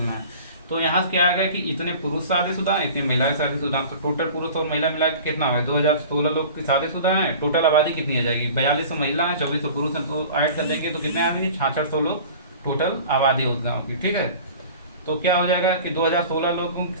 है। तो यहाँ से क्या आ गया कि इतने पुरुष शादीशुदा हैं, इतनी महिलाएं शादीशुदा हैं। तो टोटल पुरुष और महिला मिला के कितना है? 2016 लोग की शादीशुदा हैं। टोटल आबादी कितनी आ जाएगी? 4200 महिला है, 2400 पुरुष हैं, तो ऐड कर देंगे तो कितने आ जाएंगे? 6600 लोग टोटल आबादी उस गाँव की। ठीक है, तो क्या हो जाएगा कि 2016 लोगों की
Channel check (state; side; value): inverted; both; correlation -0.41